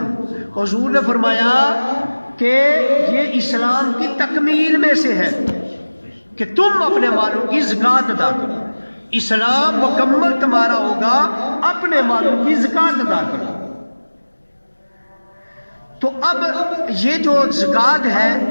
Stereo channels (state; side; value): inverted; both; correlation -1.00